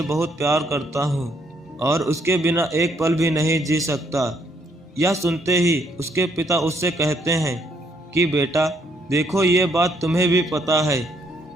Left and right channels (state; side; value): normal; both; correlation 0.71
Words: बहुत प्यार करता हूँ और उसके बिना एक पल भी नहीं जी सकता। यह सुनते ही उसके पिता उससे कहते हैं कि बेटा देखो, ये बात तुम्हें भी पता है